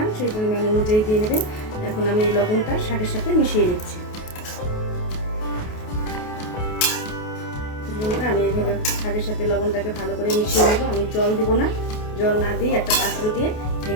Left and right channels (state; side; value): late; right; 28 ms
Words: সেই পরিমাণ অনুযায়ী দিয়ে নেবেন। এখন আমি এই লবণটা শাকের সাথে মিশিয়ে নিচ্ছি। বন্ধুরা, আমি এইভাবে শাকের সাথে লবণটাকে ভালো করে মিশিয়ে নেব। আমি জল দিব না, জল না দিয়ে একটা পাত্র দিয়ে